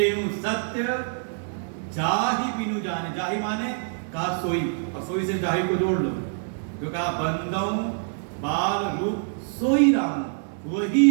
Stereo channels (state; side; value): silent; left; digital silence